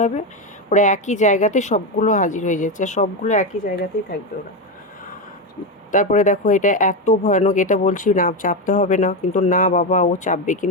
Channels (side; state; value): both; normal; correlation 0.12